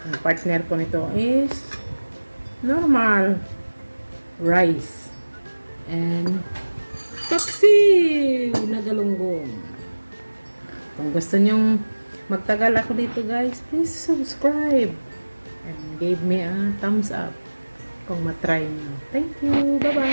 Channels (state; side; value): inverted; both; correlation -1.00